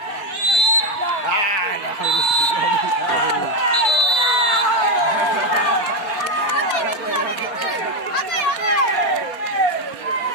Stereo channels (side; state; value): right; late; 4.2 ms